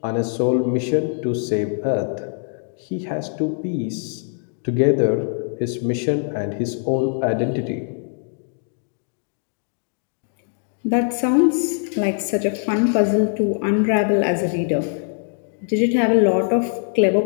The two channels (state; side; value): silent; right; 64 dB below the other